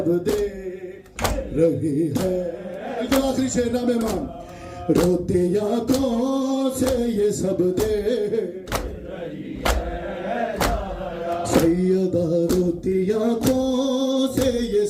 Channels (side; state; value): both; identical; correlation 1.00